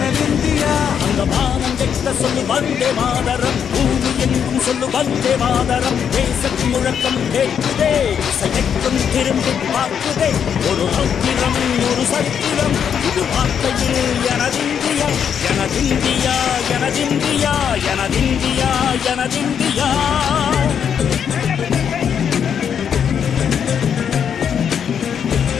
அந்த வானம் கெட்ட சொல்லு வந்தே மாதரம், பூமி எங்கும் சொல்லு வந்தே மாதரம். தேசத்தின் முழக்கம் கேட்குதே, திசையெட்டும் திரும்பி பார்க்குதே. ஒரு ரோத்திரம் ஒரு சரித்திரம், இது வார்த்தையில் எனதிந்தியா எனதிந்தியா எனதிந்தியா எனதிந்தியா எனதிந்தியா.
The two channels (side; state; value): right; quieter; 7.9 dB